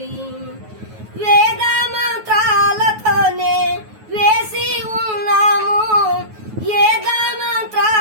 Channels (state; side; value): late; left; 9.3 ms